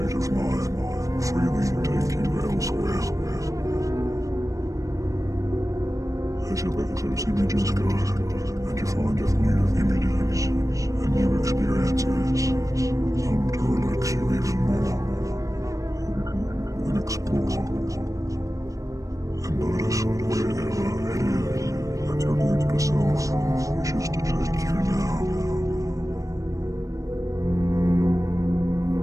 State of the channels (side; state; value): left; late; 0.16 ms